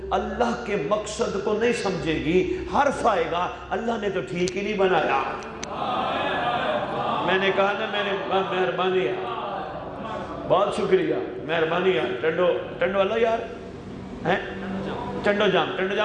اللہ کے مقصد کو نہیں سمجھے گی، حرف آئے گا اللہ نے تو ٹھیک ہی نہیں بنایا۔ میں نے کہا نا، میں نے مہربانی ہے، بہت شکریہ، مہربانی ہے، ٹنڈو والا یار ہیں، ٹنڈو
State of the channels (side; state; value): both; identical; correlation 1.00